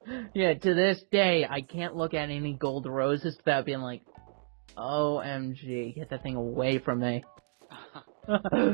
Yeah, to this day, I can't look at any gold roses without being like, OMG, get that thing away from me. Well,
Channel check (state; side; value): silent; left; digital silence